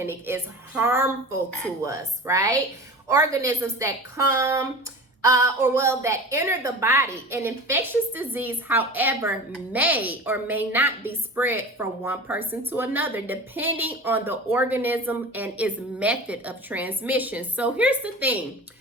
is harmful to us, right? Organisms that come that enter the body. An infectious disease, however, may or may not be spread from one person to another, depending on the organism and its method of transmission. So here's the thing.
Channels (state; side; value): normal; both; correlation 0.34